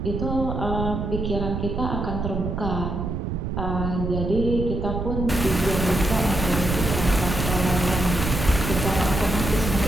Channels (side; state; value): right; noise; rumble, 3 dB below the sound